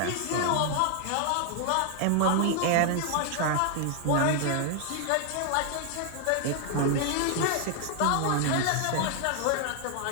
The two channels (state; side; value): different; both; correlation 0.00